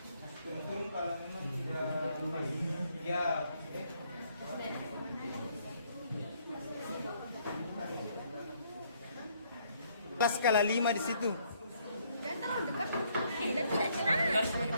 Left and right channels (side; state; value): both; inverted; correlation -0.68